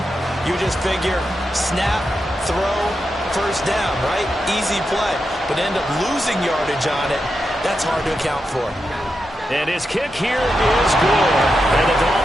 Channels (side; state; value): both; normal; correlation 0.87